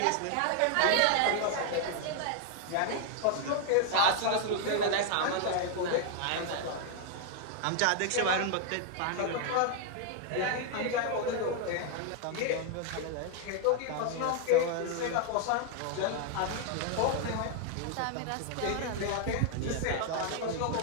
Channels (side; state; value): both; different; correlation 0.00